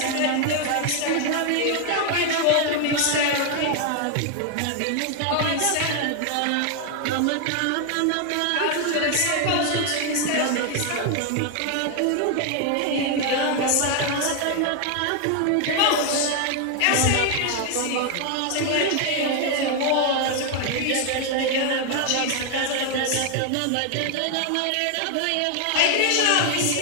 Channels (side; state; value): both; different; correlation 0.00